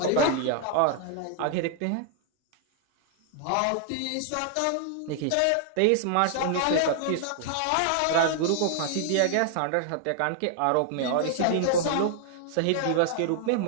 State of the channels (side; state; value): both; different; correlation 0.00